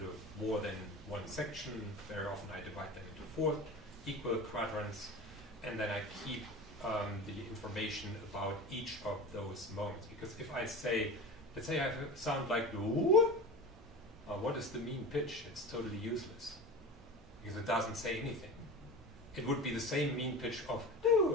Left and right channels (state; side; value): normal; both; correlation 0.32